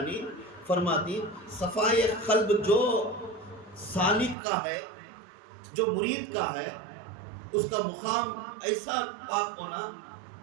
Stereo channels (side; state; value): left; drops out; at 4.4 s